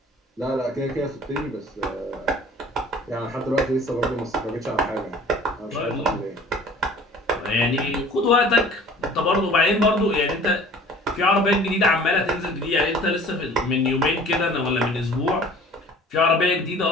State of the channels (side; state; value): both; normal; correlation 0.47